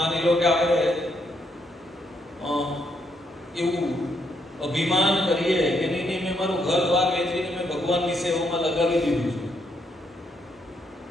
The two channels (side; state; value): both; normal; correlation 0.75